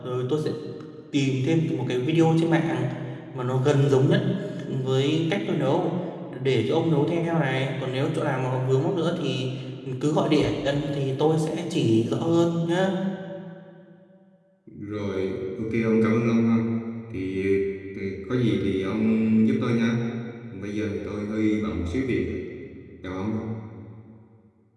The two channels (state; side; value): identical; both; correlation 1.00